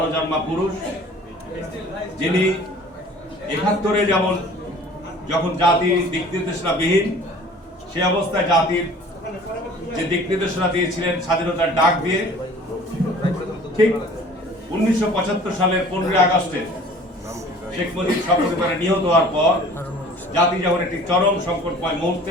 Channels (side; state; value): both; normal; correlation 0.48